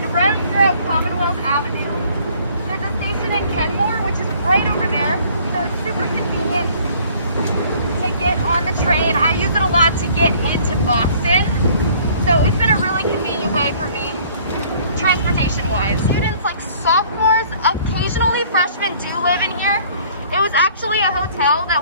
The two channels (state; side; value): inverted; both; correlation -0.56